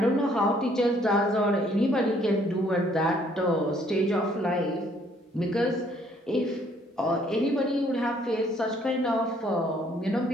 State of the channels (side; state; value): both; normal; correlation 0.64